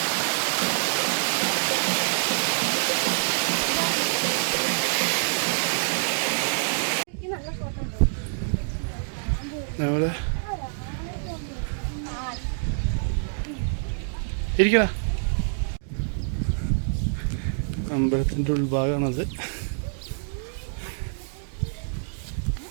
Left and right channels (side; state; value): left; silent; digital silence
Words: നമ്മള് ഇരിക്കണ അമ്പലത്തിന്റെ ഉൾഭാഗമാണത്.